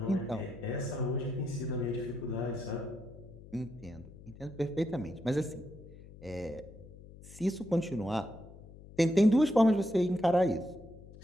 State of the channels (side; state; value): left; noise; hum, 18 dB below the sound